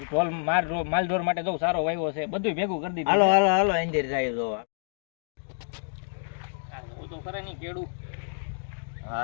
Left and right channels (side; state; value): right; silent; digital silence